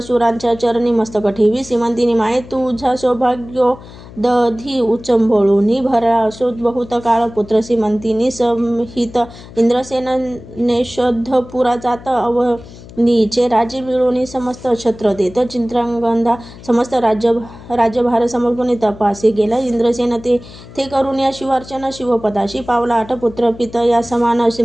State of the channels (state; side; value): noise; left; hum, 18 dB below the sound